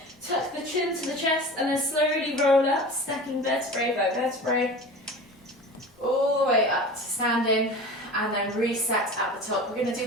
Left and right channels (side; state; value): both; normal; correlation 0.36